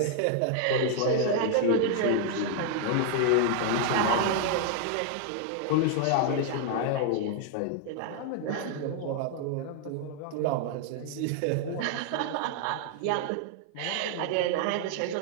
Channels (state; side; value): different; both; correlation 0.00